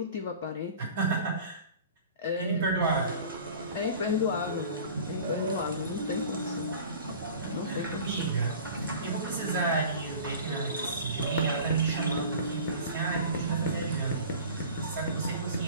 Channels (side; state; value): both; inverted; correlation -0.42